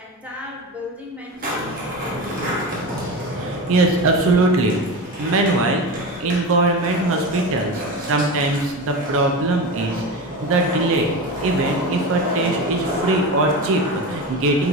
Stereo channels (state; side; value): normal; both; correlation 0.25